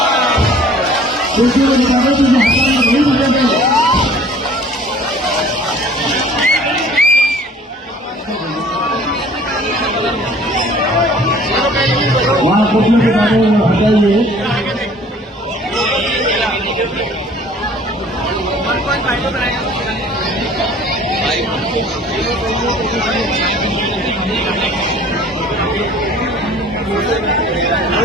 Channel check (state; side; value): normal; both; correlation 0.51